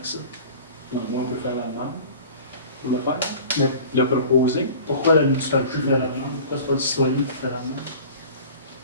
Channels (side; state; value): both; inverted; correlation -0.42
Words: ça. Au moins, on peut faire la demande pour le faire, Mais le proposer. pourquoi la municipalité fait la demande? Pourquoi c'est pas le citoyen qui fait la demande?